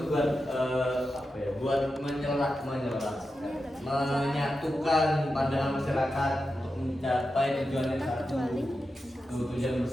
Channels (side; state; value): both; normal; correlation 0.90